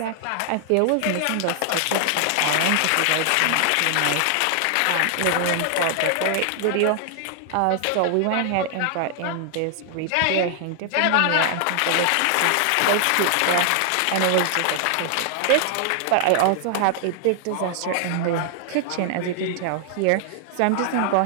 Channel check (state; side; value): different; both; correlation 0.00